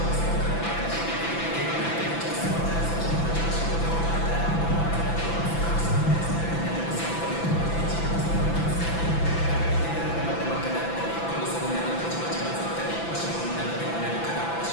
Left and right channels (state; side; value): late; right; 6.0 ms